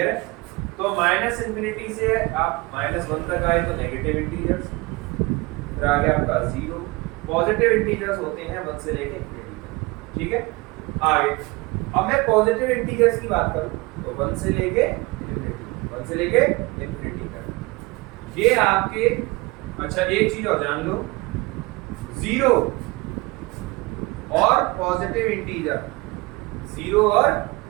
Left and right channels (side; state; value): left; quieter; 24.3 dB